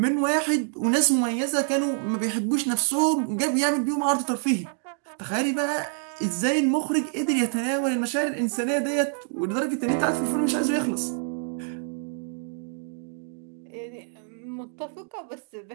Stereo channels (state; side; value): silent; left; 58 dB below the other